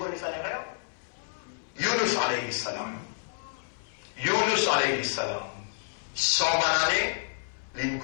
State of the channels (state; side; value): silent; right; 58 dB below the other